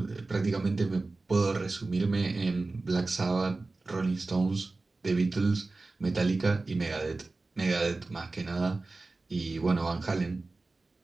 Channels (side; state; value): left; quieter; 3.4 dB